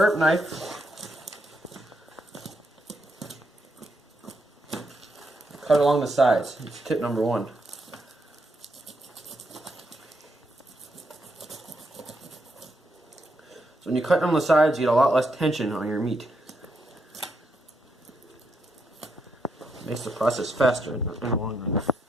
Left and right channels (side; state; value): both; normal; correlation 0.79